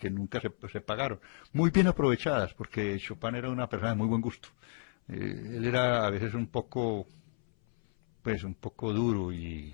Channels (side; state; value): right; silent; 56 dB below the other